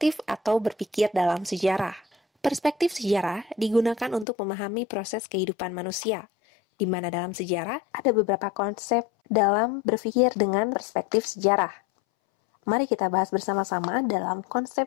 atau berpikir dalam sejarah. Perspektif sejarah digunakan untuk memahami proses kehidupan manusia, di mana dalam sejarah ada beberapa konsep dalam berpikir dengan perspektif sejarah. Mari kita bahas bersama-sama dalam konsep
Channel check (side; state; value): right; drops out; at 4.2 s